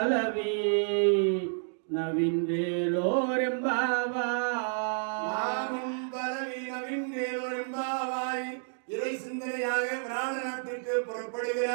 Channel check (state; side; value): silent; left; digital silence